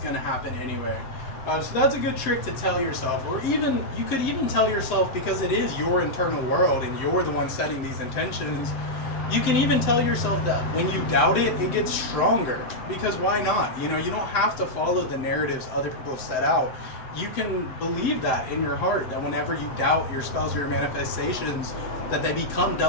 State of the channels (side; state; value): right; late; 7.8 ms